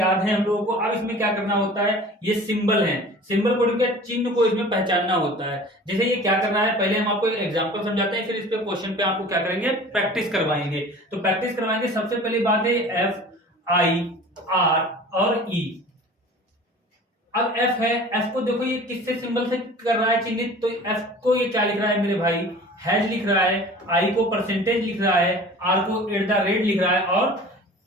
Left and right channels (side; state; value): both; normal; correlation 0.42